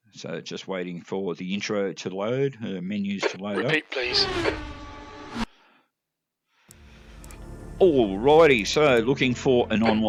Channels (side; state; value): both; identical; correlation 1.00